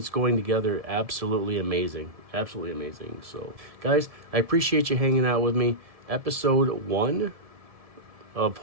going together absolutely amazing, absolutely amazing. So, guys, I appreciate you hanging out with me. Episode 1 of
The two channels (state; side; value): late; left; 1.7 ms